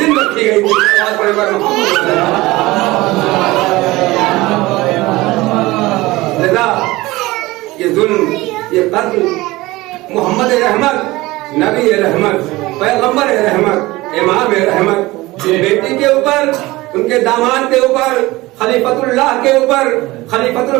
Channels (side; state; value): left; quieter; 19.8 dB